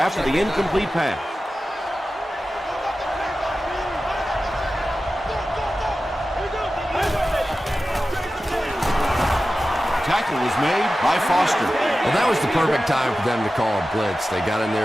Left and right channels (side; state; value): both; normal; correlation 0.94